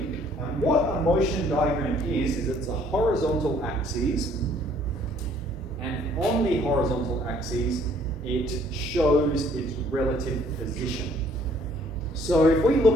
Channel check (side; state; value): both; normal; correlation 0.60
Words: And what a motion diagram is it's a horizontal axis. And on the horizontal axis, it shows its relative position. So if we